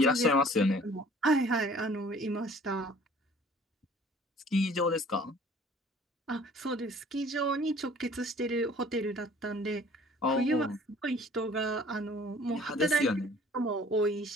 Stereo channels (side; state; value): both; normal; correlation 0.52